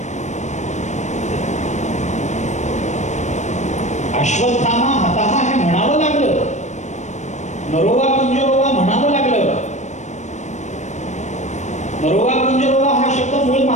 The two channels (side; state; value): right; late; 0.34 ms